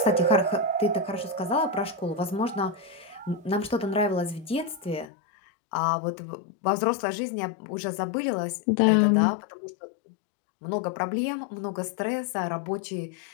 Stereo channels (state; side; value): drops out; right; at 5.1 s